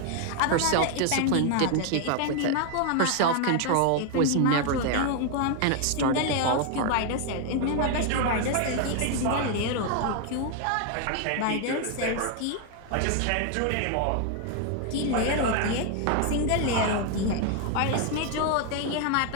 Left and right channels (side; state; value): both; different; correlation 0.01